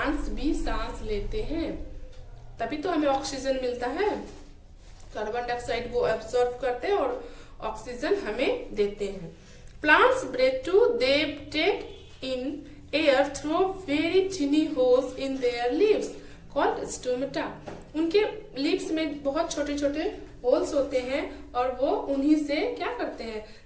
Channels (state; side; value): identical; both; correlation 1.00